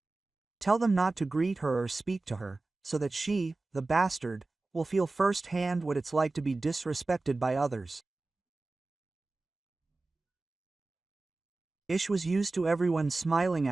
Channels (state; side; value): quieter; left; 3.3 dB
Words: Tell them not to greet her or speak to her, so that she, the bastard, will feel firsthand what it's like to be disrespected by others. Ish was used to everyone smiling